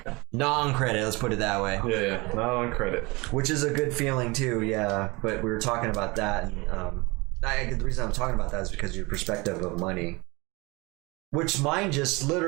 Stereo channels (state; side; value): quieter; left; 25.1 dB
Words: Non-credit, let's put it that way. Yeah. Not on credit. Which is a good feeling too. Yeah, but we were talking about that, and the reason I'm talking about that is because your perspective of money. Which mine just